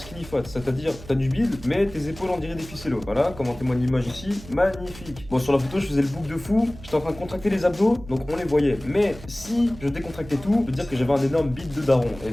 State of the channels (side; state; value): right; noise; hum, 16 dB below the sound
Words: fat, c'est-à-dire t'as du bide, mais tes épaules on dirait des ficellos. Voilà, comme en témoigne l'image ici, magnifique. Bon, sur la photo je faisais le bouc de fou, j'étais en train de contracter les abdos, donc on les voyait. Mais si je décontractais tout, je peux dire que j'avais un énorme bide de daron. Et